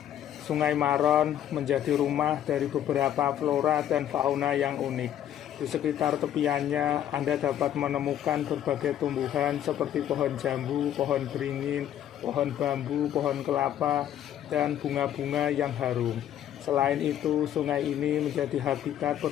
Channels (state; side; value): quieter; right; 10.9 dB